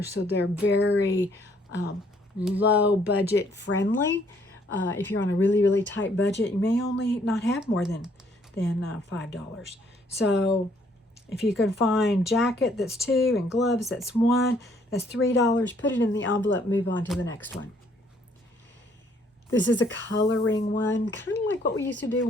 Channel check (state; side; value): normal; both; correlation 0.65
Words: so they're very low budget friendly. If you're on a really, really tight budget, you may only not have more than $5. So if you can find jacket, that's 2, and gloves, that's 1, that's $3. Put it in the envelope, move on to the next one. This is a coloring one, kind of like what we used to do